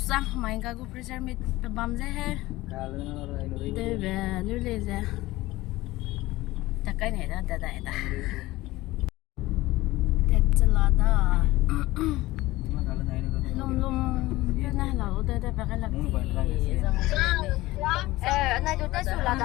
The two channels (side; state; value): right; quieter; 18.4 dB